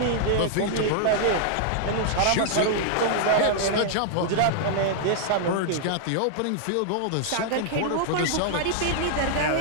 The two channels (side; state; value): both; different; correlation -0.01